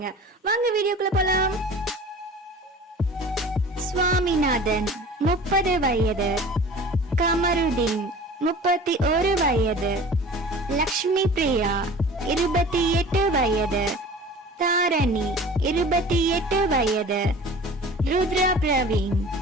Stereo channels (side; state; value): both; normal; correlation 0.42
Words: வாங்க வீடியோக்குள்ள போலாம். சுவாமிநாதன் 30 வயது, கமருதீன் 31 வயது, லக்ஷ்மி பிரியா 28 வயது, தாரணி 28 வயது, ருத்ரா பிரவீன்